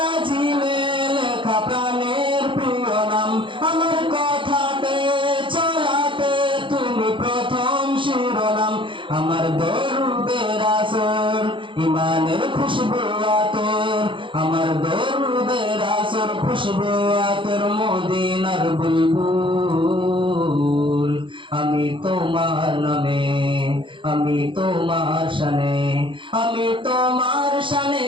লেখা প্রাণের প্রিয় নাম, আমার কথাতে চলাতে তুমি প্রথম শিরোনাম। আমার দরুদের আসর ইমানের খুশবু আতর, আমার দরুদের আসর খুশবু আতর মদিনার বুলবুল। আমি তোমার নামে, আমি তোমার শানে, আমি তোমার শানে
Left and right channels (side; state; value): left; late; 0.24 ms